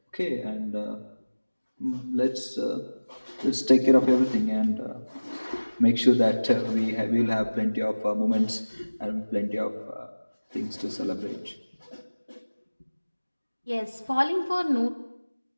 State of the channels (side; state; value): both; inverted; correlation -1.00